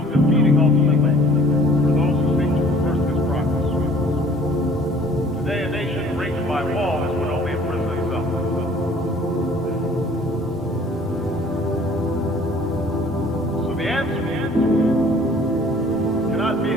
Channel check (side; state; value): both; normal; correlation 0.53